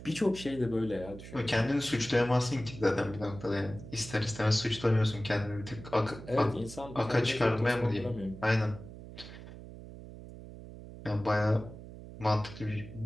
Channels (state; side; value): noise; right; hum, 14 dB below the sound